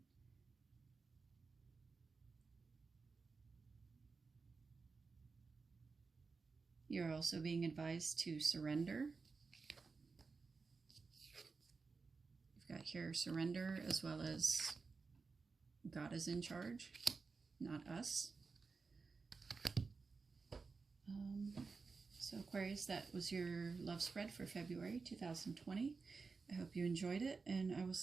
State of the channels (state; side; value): quieter; left; 4.5 dB